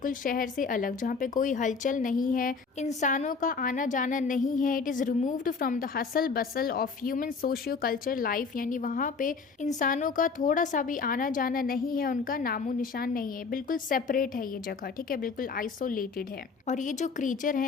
शहर से अलग, जहाँ पे कोई हलचल नहीं है, इंसानों का आना जाना नहीं है। It is removed from the hustle bustle of human socio culture life, यानी वहाँ पे इंसानों का थोड़ा सा भी आना जाना नहीं है, उनका नामो निशान नहीं है, बिल्कुल सेपरेट है ये जगह। ठीक है, बिल्कुल आइसोलेटेड है। और ये जो क्रीचर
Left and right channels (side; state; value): right; quieter; 5.0 dB